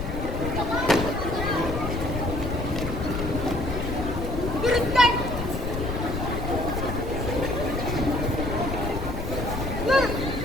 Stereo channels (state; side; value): noise; left; rumble, 4 dB below the sound